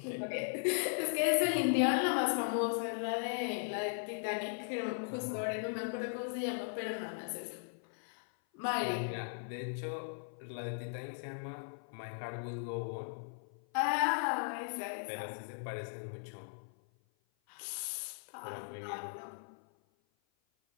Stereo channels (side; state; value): right; silent; 53 dB below the other